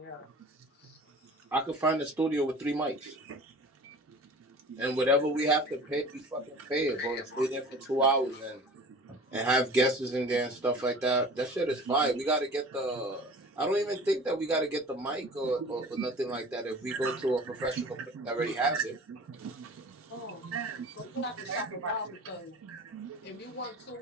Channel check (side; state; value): both; normal; correlation 0.42